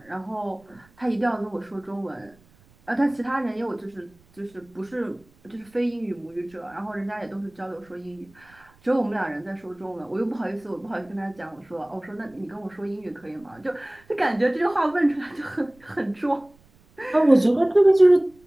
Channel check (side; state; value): right; noise; rumble, 30 dB below the sound